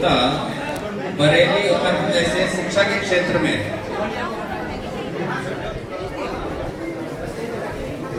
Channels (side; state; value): both; identical; correlation 1.00